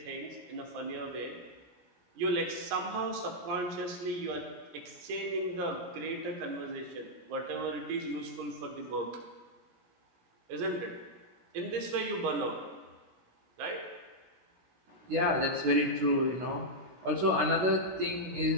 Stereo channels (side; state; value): left; late; 16 ms